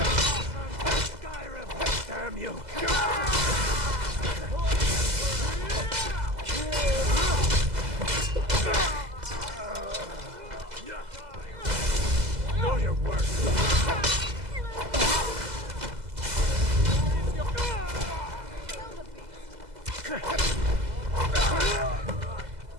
Damn you! Know your worth!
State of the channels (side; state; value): left; late; 2.0 ms